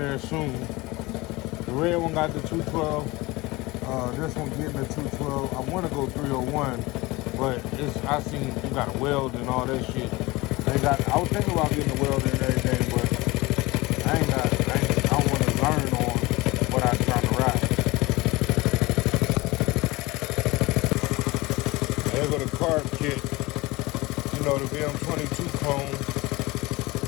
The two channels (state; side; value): quieter; right; 21.8 dB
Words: soon. The red one got the 212. This one getting the 212. I want to go 301, but I seen you got a weld and all that shit. I was thinking about getting a weld and everything, but I want to learn on what I'm trying to ride. There go the carb kit. You know, the VM22 clone